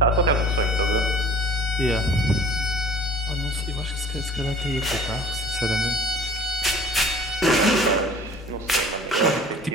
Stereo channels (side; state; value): both; normal; correlation 0.47